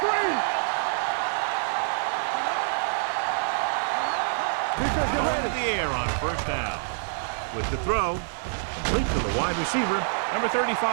Going to the air on 1st down. With the throw, complete to the wide receiver, number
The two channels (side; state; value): left; silent; digital silence